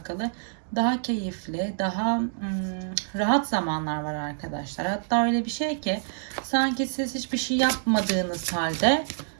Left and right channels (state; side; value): silent; left; digital silence